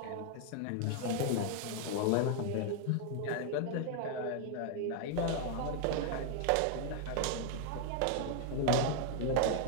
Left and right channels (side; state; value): both; different; correlation 0.00